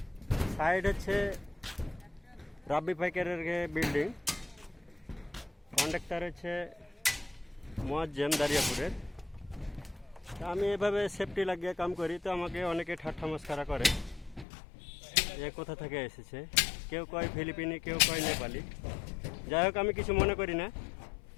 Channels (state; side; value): drops out; right; at 14.5 s